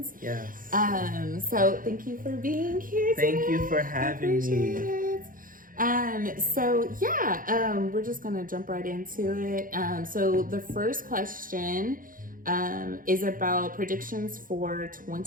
Yes. So thank you for being here today. Thank you for I having appreciate me. it. We're just going to jump right into it. So the first question is about predictions for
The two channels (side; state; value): left; late; 0.40 ms